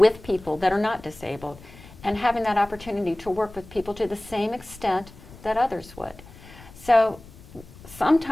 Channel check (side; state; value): left; noise; rumble, 20 dB below the sound